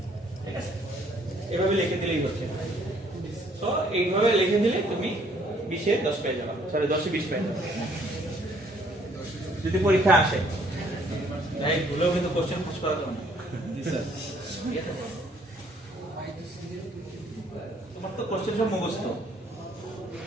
ঠিক আছে। এভাবে লিখে দিলেই হচ্ছে। তো এইভাবে লিখে দিলে তুমি 20 এ 10 পেয়ে যাবে। সরি 10 20 পেয়ে যাবে যদি পরীক্ষা আসে। তাই ভুলেও কিন্তু কোশ্চেন ফাঁস করা যাবে না। তোমার তো কোশ্চেন সব মুখস্থ,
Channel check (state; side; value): normal; both; correlation 0.63